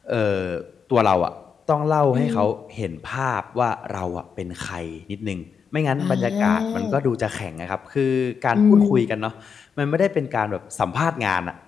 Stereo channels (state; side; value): quieter; right; 6.4 dB